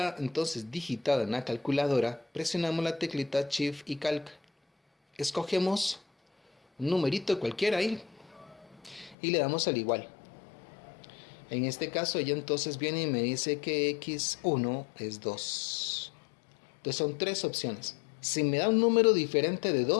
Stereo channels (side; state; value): right; drops out; at 9.2 s